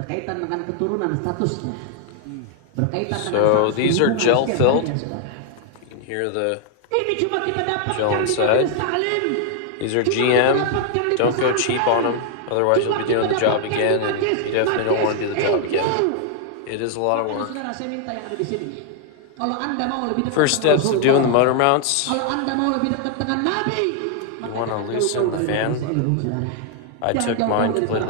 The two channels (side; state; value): both; different; correlation 0.00